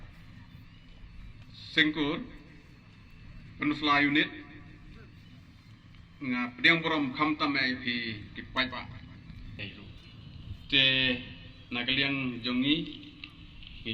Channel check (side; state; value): both; identical; correlation 1.00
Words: sengkur penusla unit nga pediang borom khamtam ai phi ki pai pa te nagaliang jongi